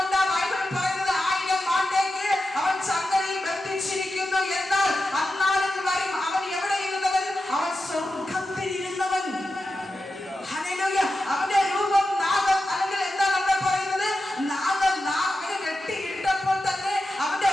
ബൈബിൾ പറയുന്നത് 1000 ആണ്ടേക്ക് അവൻ ചങ്ങലയിൽ ബന്ധിച്ചിരിക്കുന്നു. എന്നാൽ അന്നാളിൽ വരും അവൻ എവിടെ ഇരുന്നവൻ? അവൻ സ്വർഗത്തിൽ ഇരുന്നവൻ. ഹല്ലേലൂയ. അവന്റെ രൂപം നാഗം അല്ലെങ്കിൽ എന്താണ് അവിടെ പറയുന്നത്? നാഗനെ വെട്ടിയിട്ടപ്പോൾ തന്നെ അവന്റെ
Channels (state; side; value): normal; both; correlation 0.91